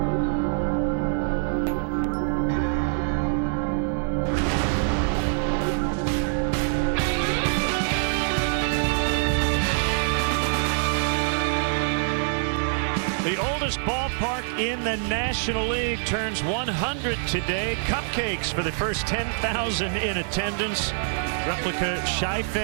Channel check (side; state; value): left; silent; digital silence